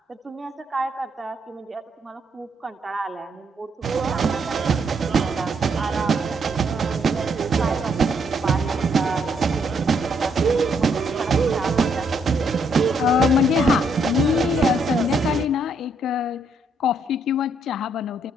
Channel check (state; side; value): normal; both; correlation 0.73